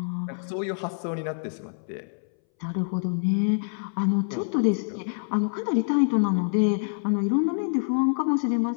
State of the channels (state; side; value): silent; right; 60 dB below the other